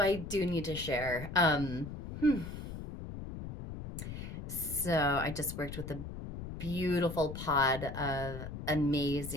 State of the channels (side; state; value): left; noise; rumble, 8 dB below the sound